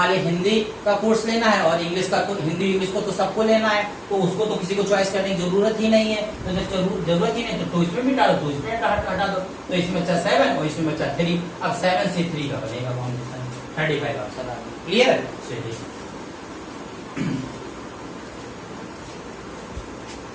लीजिए हिंदी का कोर्स लेना है और इंग्लिश का, हिंदी इंग्लिश को तो सबको लेना है, तो उसको तो किसी को चॉइस करने की जरूरत ही नहीं है। तो जब जरूरत ही नहीं तो इसमें भी डालो, तो इसमें हटा दो। तो इसमें बचा 7 और इसमें बचा 3। अब 7C3 का बनेगा कॉम्बिनेशन 35 आंसर। क्लियर है? चलिए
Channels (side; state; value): both; identical; correlation 1.00